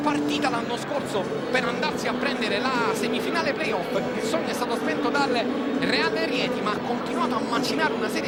l'anno scorso per andarsi a prendere la semifinale playoff, il sogno è stato spento dal Reale Rieti ma ha continuato a macinare una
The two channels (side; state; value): both; identical; correlation 1.00